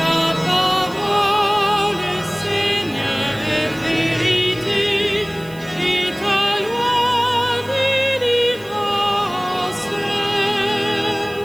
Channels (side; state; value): right; noise; hiss, 23 dB below the sound